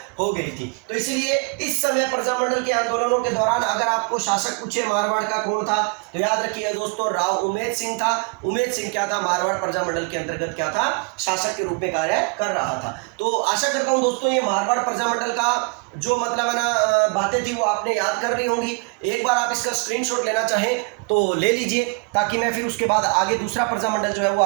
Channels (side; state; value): left; quieter; 35.0 dB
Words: हो गई थी। तो इसलिए इस समय प्रजामंडल के आंदोलनों के दौरान अगर आपको शासक पूछे मारवाड़ का कौन था, तो याद रखिएगा दोस्तों राव उम्मेद सिंह था। उम्मेद सिंह क्या था, मारवाड़ प्रजामंडल के अंतर्गत क्या था, शासक के रूप में कार्य कर रहा था। तो आशा करता हूं दोस्तों ये मारवाड़ प्रजामंडल का जो मतलब है ना बातें थी वो आपने याद कर ली होंगी। एक बार आप इसका स्क्रीनशॉट लेना चाहें तो ले लीजिए, ताकि मैं फिर उसके बाद आगे दूसरा प्रजामंडल जो है वो